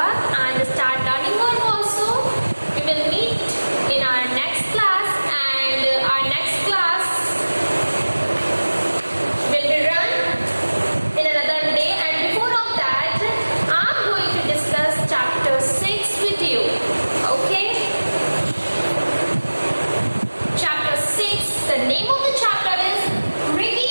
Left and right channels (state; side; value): inverted; both; correlation -1.00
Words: and start learning more also. We will meet in our next class, and our next class will be run in another day. And before of that, I'm going to discuss chapter 6 with you. Okay? Chapter 6, the name of the chapter is